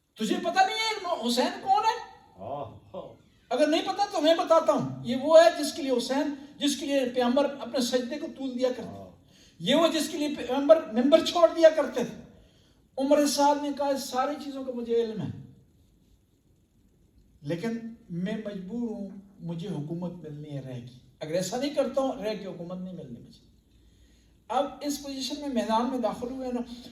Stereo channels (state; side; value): identical; both; correlation 1.00